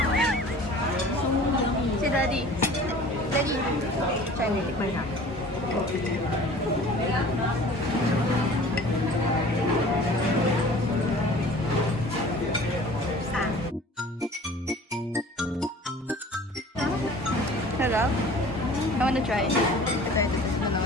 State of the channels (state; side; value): normal; both; correlation 0.45